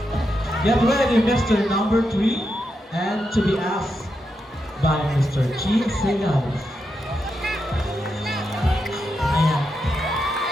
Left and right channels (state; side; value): normal; both; correlation 0.85